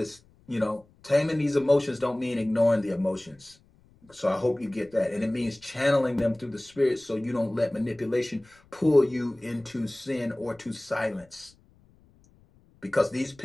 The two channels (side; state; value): left; noise; rumble, 30 dB below the sound